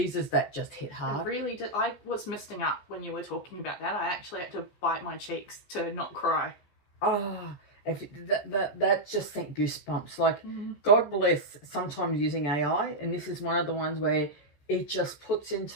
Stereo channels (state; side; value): late; right; 14 ms